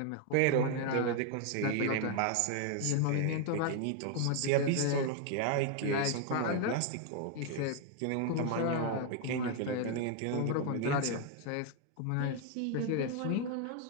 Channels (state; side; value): different; both; correlation 0.00